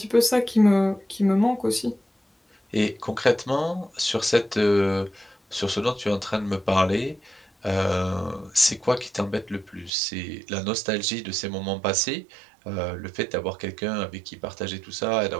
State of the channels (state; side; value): drops out; left; at 9.9 s